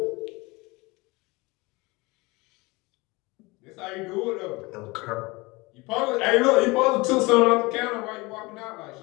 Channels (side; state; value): right; quieter; 24.2 dB